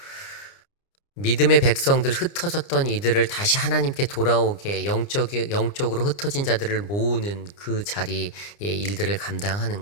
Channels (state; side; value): late; right; 29 ms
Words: 믿음의 백성들, 흩어졌던 이들을 다시 하나님께 돌아오게 영적으로 흩어진 자들을 모으는 그 자리의 일들을